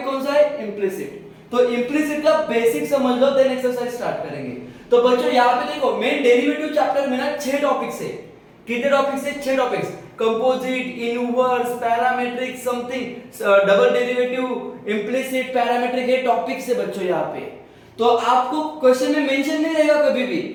कौन सा है? इम्प्लिसिट। तो इम्प्लिसिट का बेसिक समझ लो, देन एक्सरसाइज स्टार्ट करेंगे। तो बच्चों, यहाँ पे देखो, मेन डेरिवेटिव चैप्टर में ना 6 टॉपिक्स है। कितने टॉपिक्स है? 6 topics. Composite, inverse, parametric, something, double derivative, implicit, parametric, ये टॉपिक्स है बच्चों यहाँ पे। तो आपको क्वेश्चन में मेंशन नहीं रहेगा कभी भी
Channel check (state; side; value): identical; both; correlation 1.00